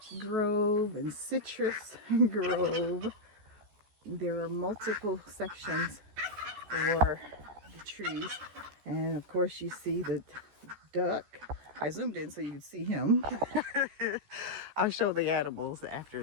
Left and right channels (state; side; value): late; left; 14 ms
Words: grove and citrus grove. There are multiple sections for the trees, and of course you see the duck. I zoomed in so you can see him. I'll show the animals after